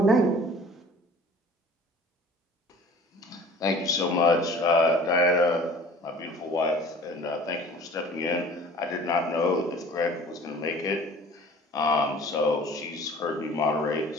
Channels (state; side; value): normal; both; correlation 0.47